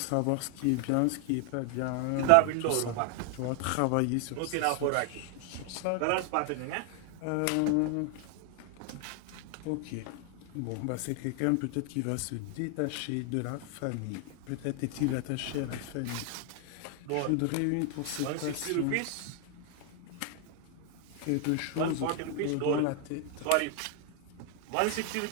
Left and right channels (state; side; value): different; both; correlation 0.00